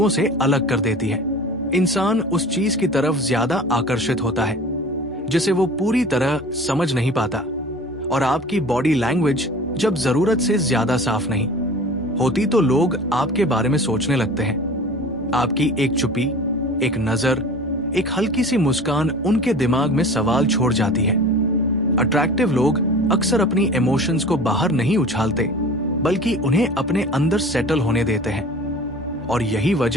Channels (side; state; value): both; normal; correlation 0.40